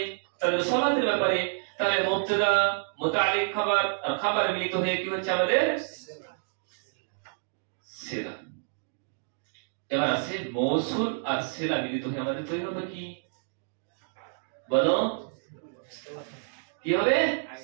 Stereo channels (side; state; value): left; silent; digital silence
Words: তাদের সালাতের ব্যাপারে। তাহলে মুবতাদা মুতাআল্লিক খবর আর খবর মিলিত হয়ে কি হচ্ছে আমাদের? সিলা। এবার আছে মৌসুল আর সিলা মিলিত হয়ে আমাদের তৈরি হবে কি, বলো কি হবে?